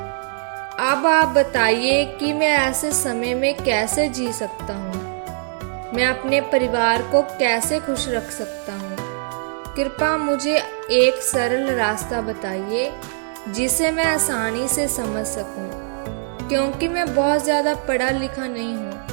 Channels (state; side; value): silent; left; digital silence